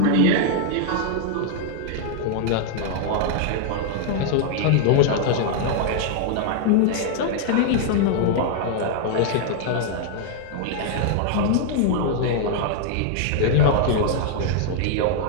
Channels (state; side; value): different; both; correlation 0.00